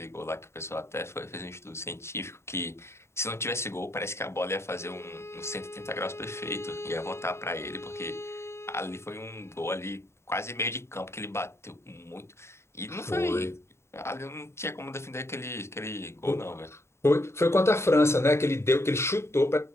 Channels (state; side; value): late; right; 0.13 ms